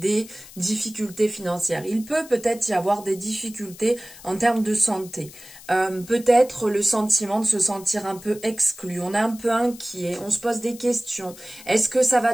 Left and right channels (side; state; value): left; noise; hiss, 18 dB below the sound